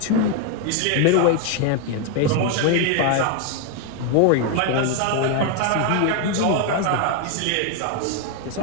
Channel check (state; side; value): different; both; correlation 0.01